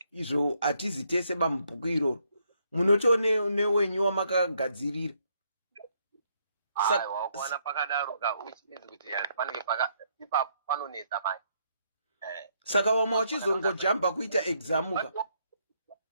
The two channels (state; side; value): inverted; both; correlation -0.73